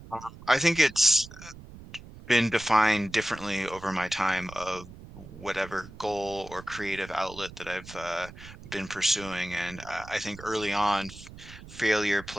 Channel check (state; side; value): noise; right; rumble, 16 dB below the sound